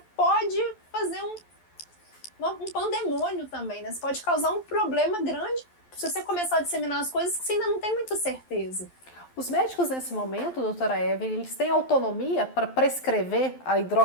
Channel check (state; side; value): late; right; 12 ms